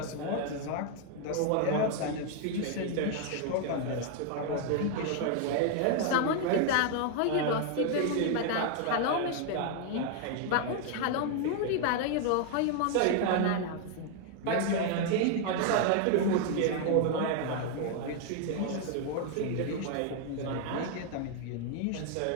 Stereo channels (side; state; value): both; different; correlation 0.00